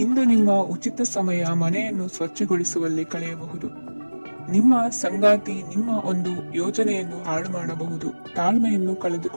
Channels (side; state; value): both; inverted; correlation -1.00